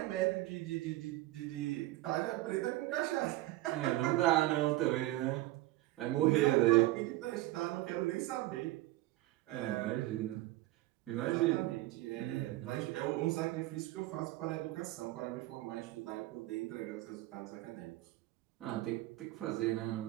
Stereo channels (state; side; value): quieter; left; 17.5 dB